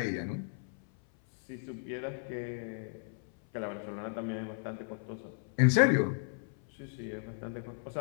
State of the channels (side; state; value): right; silent; 55 dB below the other